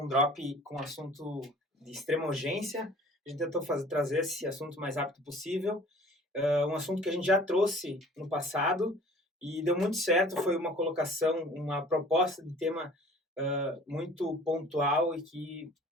um drop com um assunto de extrema urgência. A gente tentou trazer esse assunto o mais rápido possível. Um assunto que a gente já trouxe no passado e deu muito certo. Foi uma colocação, uma proposta de tema muito pontual e que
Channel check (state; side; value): normal; both; correlation 0.49